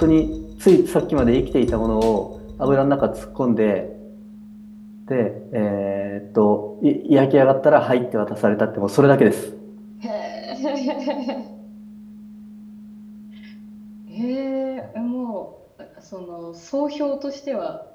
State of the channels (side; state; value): both; identical; correlation 1.00